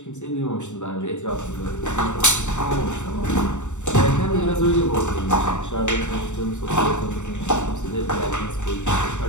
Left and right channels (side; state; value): right; late; 0.84 ms